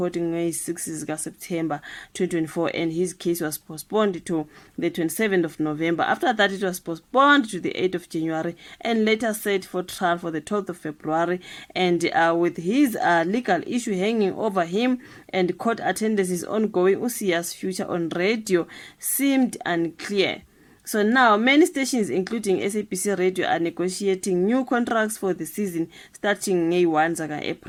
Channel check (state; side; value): identical; both; correlation 1.00